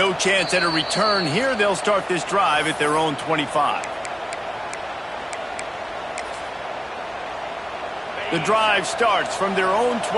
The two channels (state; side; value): identical; both; correlation 1.00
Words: chance at a return here. They'll start this drive at their own 25. The drive starts from their own